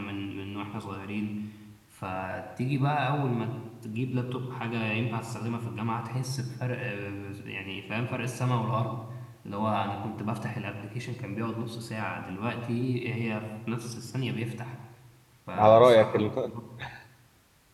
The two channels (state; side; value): identical; both; correlation 1.00